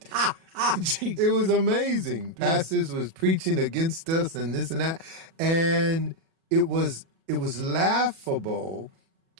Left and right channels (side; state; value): left; late; 37 ms